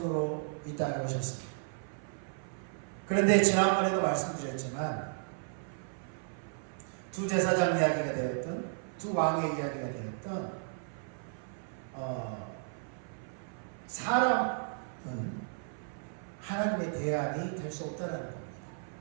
이 땅에 오셨습니다. 그런데 지난번에도 말씀드렸지만 두 제사장 이야기가 되었던, 두 왕의 이야기가 되었던 사람은 하나님의 대안이 될 수 없다는 겁니다.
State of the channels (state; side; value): silent; left; 55 dB below the other